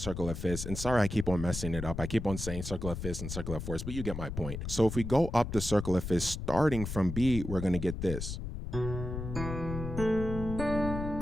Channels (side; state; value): left; noise; rumble, 6 dB below the sound